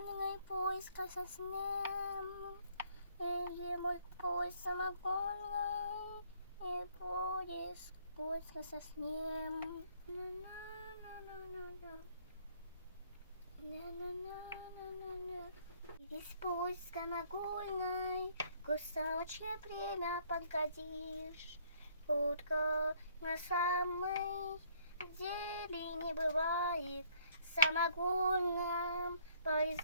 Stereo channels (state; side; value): inverted; both; correlation -0.63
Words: поезд красоснем. Эй, мой поезд самогонный, и поезд красоснем. Весь поезд самогонный, кусочек время подгодишь. Утка на самой деле не бывает в самогонном